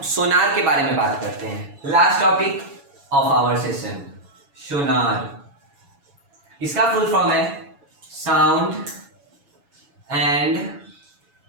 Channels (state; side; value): late; left; 7.1 ms